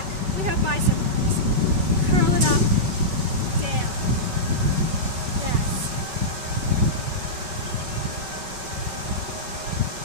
We have bicep curls. Curl it up, down. Yes.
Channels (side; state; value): left; late; 5.3 ms